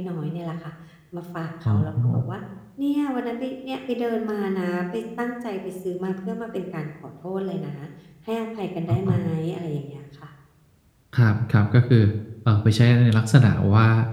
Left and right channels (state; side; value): identical; both; correlation 1.00